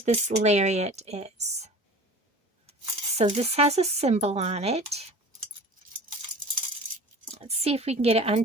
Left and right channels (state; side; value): normal; both; correlation 0.40